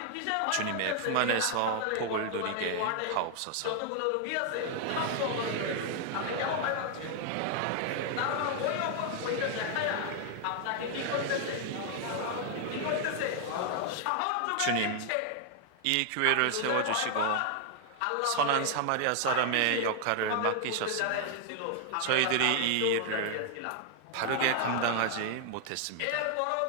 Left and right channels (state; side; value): different; both; correlation 0.00